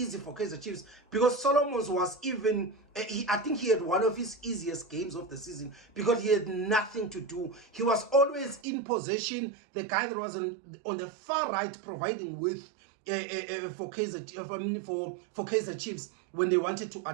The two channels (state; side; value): drops out; left; at 8.6 s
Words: for Kaizer Chiefs, because Solomons was even, I think he had one of his easiest games of the season because he had nothing to do. He was always in possession. The guy that was on the far right providing with for Kaizer Chiefs when they wanted to